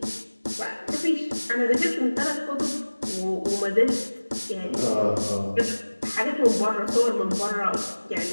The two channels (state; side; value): inverted; both; correlation -1.00